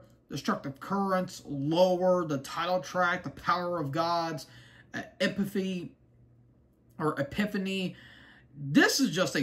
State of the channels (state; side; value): identical; both; correlation 1.00